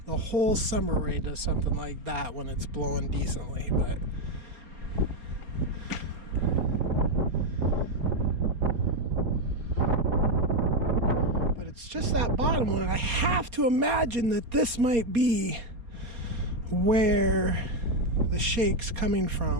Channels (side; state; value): left; late; 4.3 ms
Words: The whole summer array does something like that when it's blowing decently, but it's just that bottom one. And I have to imagine that this might be where the shake's coming